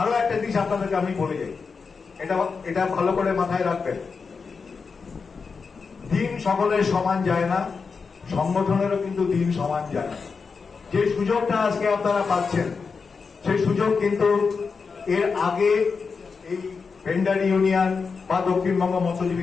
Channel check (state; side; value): quieter; right; 5.1 dB